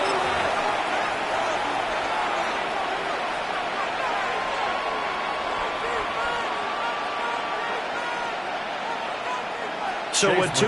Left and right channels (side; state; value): both; identical; correlation 1.00